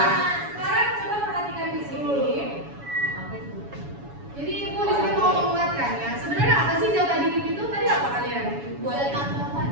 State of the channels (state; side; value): late; left; 7.1 ms